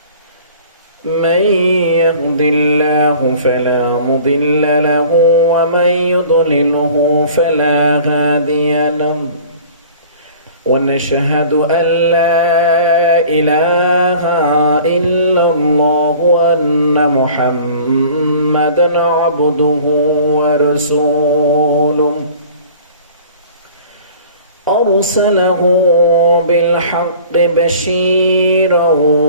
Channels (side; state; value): both; inverted; correlation -0.47